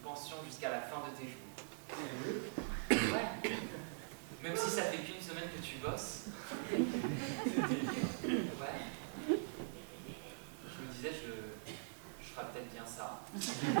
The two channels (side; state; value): left; silent; digital silence